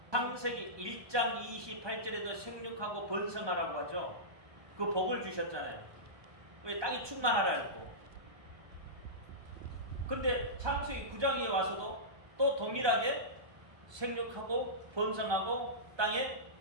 창세기 1장 28절에도 생육하고 번성하라고 하죠. 그 복을 주셨잖아요. 왜 땅이 충만하라 했고. 근데 창세기 9장에 와서도 또 동일하게 생육하고 번성하고 땅에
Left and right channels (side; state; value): left; late; 1.2 ms